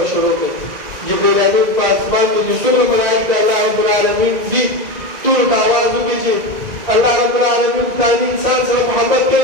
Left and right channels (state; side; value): late; left; 2.0 ms